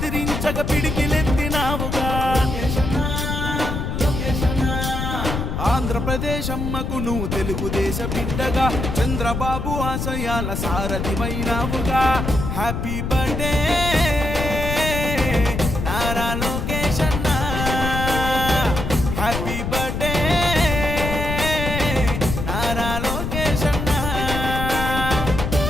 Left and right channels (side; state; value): left; noise; rumble, 3 dB below the sound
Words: పిడికిలెత్తినావుగా. ఆంధ్రప్రదేశ్ అమ్మకు నువ్వు తెలుగుదేశ బిడ్డగా, చంద్రబాబు ఆశయాల సారథివైనావుగా. హ్యాపీ బర్త్డే నారా లోకేష్ అన్న, హ్యాపీ బర్త్డే నారా లోకేష్ అన్న.